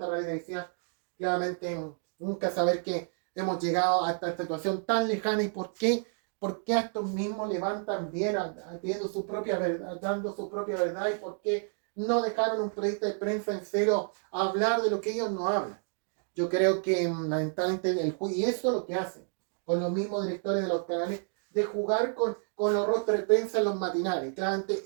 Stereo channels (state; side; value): silent; left; 58 dB below the other